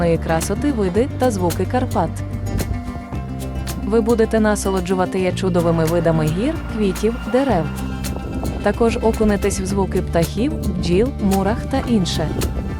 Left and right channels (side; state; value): both; identical; correlation 1.00